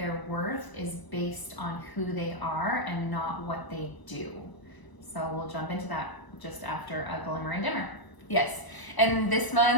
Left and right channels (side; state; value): right; late; 1.0 ms